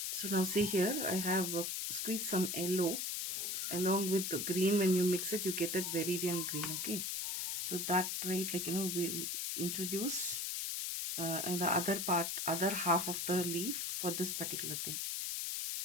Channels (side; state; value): left; noise; hiss, 1 dB below the sound